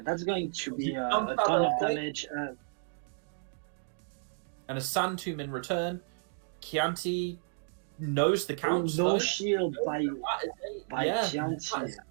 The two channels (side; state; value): left; silent; digital silence